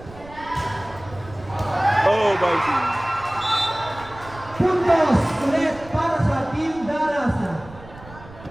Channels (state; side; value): noise; right; rumble, 18 dB below the sound